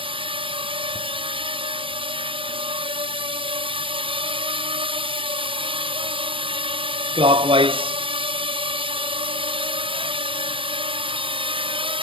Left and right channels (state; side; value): late; left; 0.25 ms